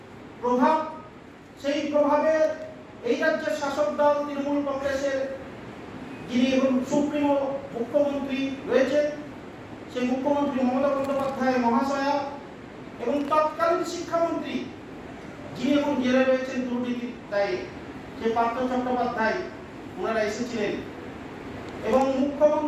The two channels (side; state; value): both; identical; correlation 1.00